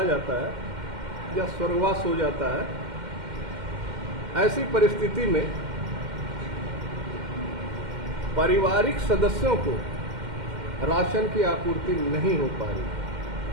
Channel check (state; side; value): late; left; 2.1 ms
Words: जाता है या स्वर्गवास हो जाता है। ऐसी परिस्थिति में पारिवारिक सदस्यों को राशन की आपूर्ति नहीं हो पा रही।